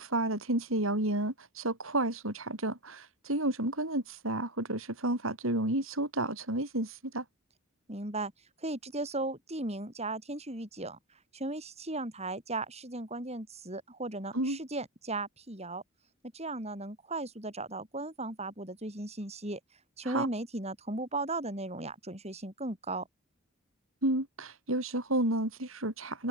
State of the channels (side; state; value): both; normal; correlation 0.13